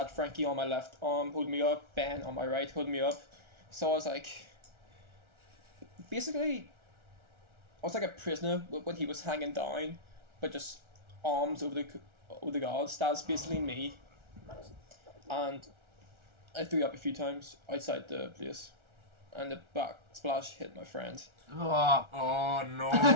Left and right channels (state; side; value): late; left; 1.4 ms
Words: Frankie on my left arm holding me up, Ben on my right holding me up. So I was like, basically, I was like a prisoner when he was hanging down, but just arms over the guards. That's basically me. And I threw up a few times outside the place, and the back splash hit my friend. Oh. Oh no!